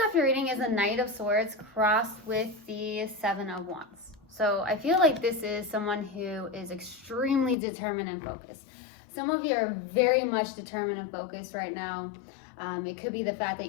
off your reading is a Knight of Swords crossed with the Seven of Wands. So I feel like this is someone who is extremely determined and focused. Some of you are very much determined and focused right now. It could be the fact that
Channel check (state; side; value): drops out; right; at 7.6 s